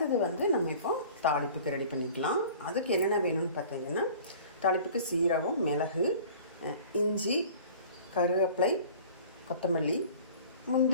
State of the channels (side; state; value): both; inverted; correlation -0.45